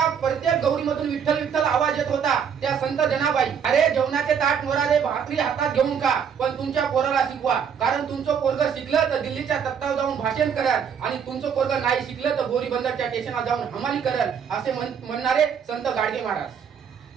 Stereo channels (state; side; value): quieter; left; 7.4 dB